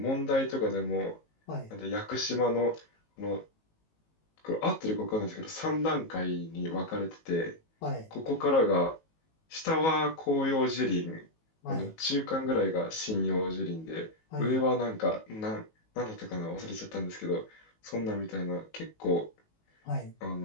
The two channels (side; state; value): right; late; 19 ms